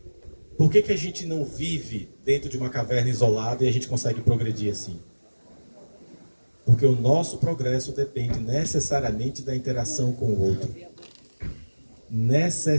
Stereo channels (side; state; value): both; inverted; correlation -1.00